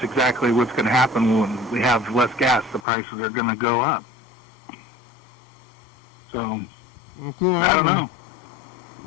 exactly what's going to happen when we have less gas. The prices are going to go up. So, I don't know.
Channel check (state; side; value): drops out; right; at 2.8 s